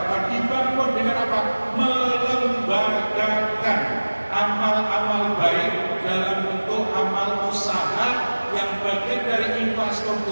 dibangun dengan apa? Melembagakan amal-amal baik dalam bentuk amal usaha yang bagian dari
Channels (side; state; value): both; inverted; correlation -1.00